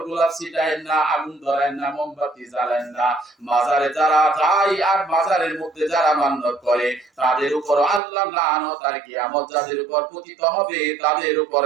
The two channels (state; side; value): drops out; left; at 8.0 s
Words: গোলাপ ছিটায় না, আগুন ধরায় না, মোমবাতি জ্বালায় না। মাজারে যারা যায় আর মাজারের মধ্যে যারা মান্নত করে তাদের উপর আল্লাহ লানত, আর কিয়ামত যাদের উপর পতিত হবে তাদের উপর